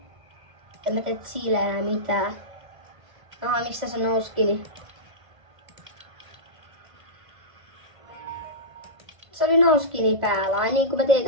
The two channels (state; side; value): late; left; 1.7 ms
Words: En mä tee siillä enää mitään. Aha, missä se nouskini? Se oli nouskini päällä, ai niin kuin mä tein